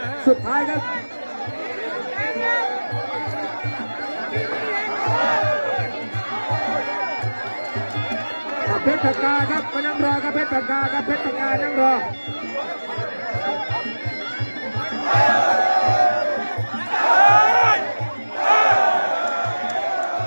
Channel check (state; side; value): inverted; both; correlation -1.00